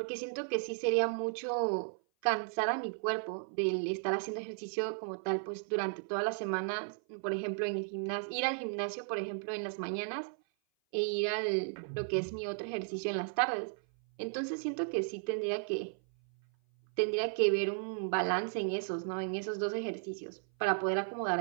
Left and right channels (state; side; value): silent; left; 55 dB below the other